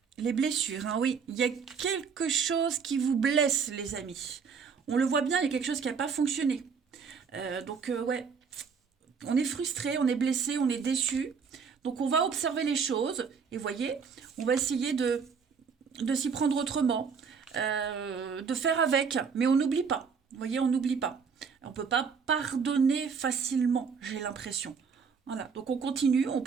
les blessures. Hein, oui, il y a quelque chose qui vous blesse, les amis. On le voit bien, il y a quelque chose qui n'a pas fonctionné. Ouais, on est frustré, on est blessé, on est déçu. Donc, on va observer les choses. Et voyez, on va essayer de s'y prendre autrement, de faire avec. Mais on n'oublie pas. Vous voyez, on n'oublie pas. On ne peut pas pardonner facilement, j'ai l'impression. Voilà, donc on continue, on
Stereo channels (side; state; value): left; quieter; 6.0 dB